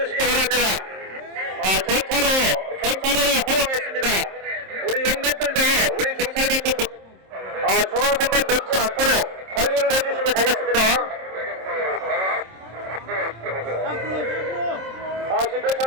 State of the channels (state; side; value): late; left; 27 ms